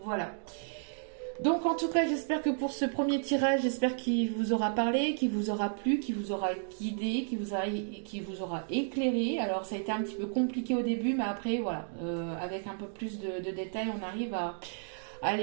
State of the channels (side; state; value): left; silent; digital silence